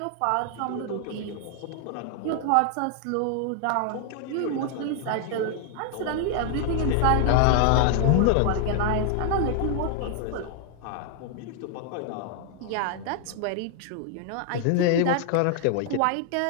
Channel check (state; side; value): different; both; correlation 0.00